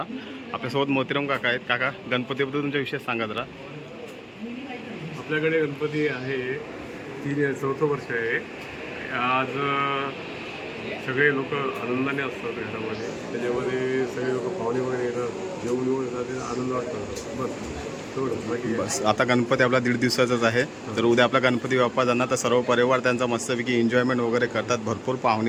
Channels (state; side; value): identical; both; correlation 1.00